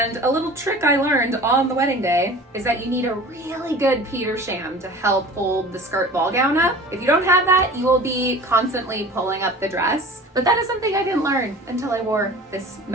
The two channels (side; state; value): both; normal; correlation 0.41